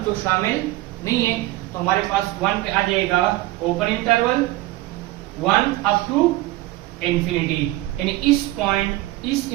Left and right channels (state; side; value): quieter; left; 17.9 dB